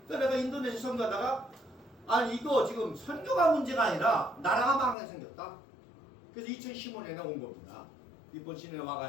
내가 인도네시아 선교하다가 아니 이거 지금 선교가 문제가 아니라 나라가 망하게 생겼다. 그래서 2015년에 온 겁니다. 일본 시내에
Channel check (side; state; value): right; drops out; at 5.0 s